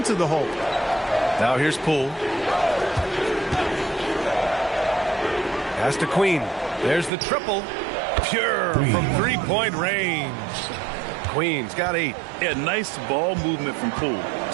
the hole. Now here's Poole. Pass to Queen. There's the triple. Pure from three-point range. Queen's got 8. Yeah, nice ball movement from Poole.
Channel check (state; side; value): drops out; left; at 7.1 s